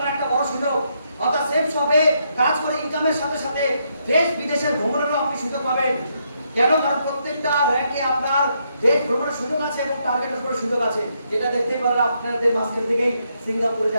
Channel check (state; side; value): inverted; both; correlation -0.77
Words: একটা বড় সুযোগ। অর্থাৎ সেফ শপে কাজ করে ইনকামের সাথে সাথে দেশ বিদেশের ভ্রমণেরও আপনি সুযোগ পাবেন। কেন? কারণ প্রত্যেকটা র্যাঙ্কে আপনার দেশ ভ্রমণের সুযোগ আছে এবং টার্গেটের উপরে সুযোগ আছে। যেটা দেখতেই পারলে আপনাদের মাঝখান থেকেই সিঙ্গাপুরে